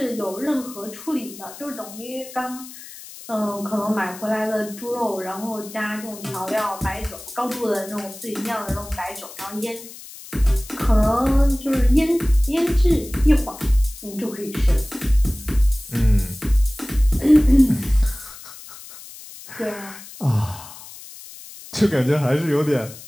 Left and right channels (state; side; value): noise; left; hiss, 16 dB below the sound